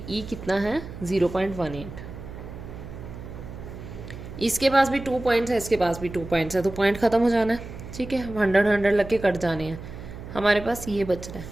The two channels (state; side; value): noise; right; hum, 12 dB below the sound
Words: कितना है 0.18। इसके पास भी 2 पॉइंट्स है, इसके पास भी 2 पॉइंट्स है, तो पॉइंट ख़त्म हो जाना है, ठीक है। 100 लग के कट जाने हैं, हमारे पास ये बच रहा है।